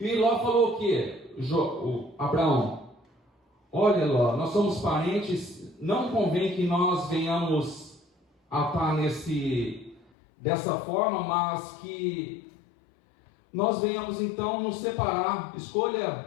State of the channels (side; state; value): right; drops out; at 10.1 s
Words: E Ló falou o quê? Abraão, olha Ló, nós somos parentes, não convém que nós venhamos a estar dessa forma, mas que nós venhamos então nos separar.